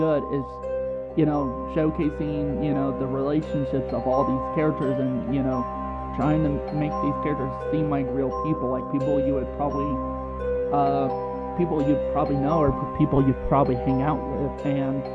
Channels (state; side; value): identical; both; correlation 1.00